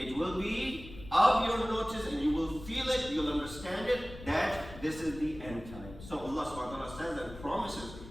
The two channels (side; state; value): left; noise; rumble, 15 dB below the sound